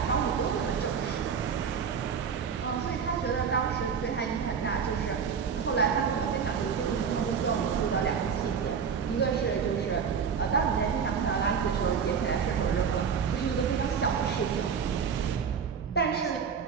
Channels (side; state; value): left; quieter; 6.6 dB